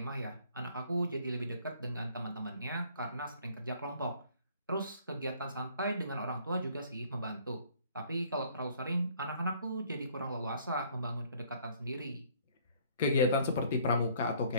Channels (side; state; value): both; inverted; correlation -0.59